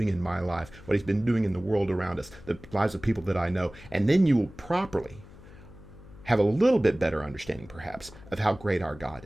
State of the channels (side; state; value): left; noise; hum, 19 dB below the sound